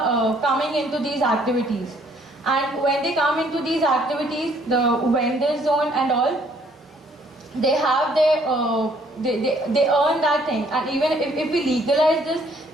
coming into these activities. And when they come into these activities, the vendor zone and all, they have their they earn that thing, and even if we legalize this,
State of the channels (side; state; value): both; normal; correlation 0.63